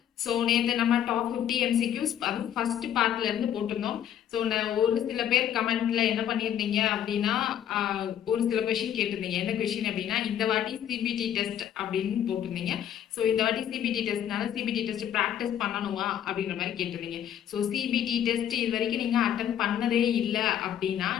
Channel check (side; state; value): right; quieter; 10.1 dB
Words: So நேற்று நம்ம top 50 MCQs அதுவும் first பார்ட்ல இருந்து போட்டிருந்தோம். ஸோ ஒரு சில பேர் கமெண்ட்ல என்ன பண்ணியிருந்தீங்க அப்படின்னா ஒரு சில கொஷின் கேட்டிருந்தீங்க. என்ன கொஷின் அப்படின்னா இந்த வாட்டி சிபிடி டெஸ்ட் அப்படின்னு போட்டிருந்தீங்க. ஸோ இந்த வாட்டி சிபிடி டெஸ்ட்னால சிபிடி டெஸ்ட் ப்ராக்டிஸ் பண்ணணுமா அப்படின்ற மாதிரி கேட்டிருந்தீங்க. ஸோ சிபிடி டெஸ்ட் இது வரைக்கும் நீங்கள் அட்டன் பண்ணதே இல்லை அப்படின்னா